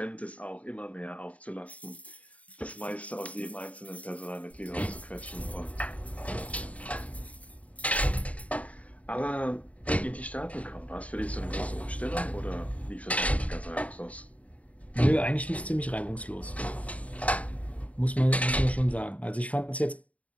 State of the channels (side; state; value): right; late; 0.068 ms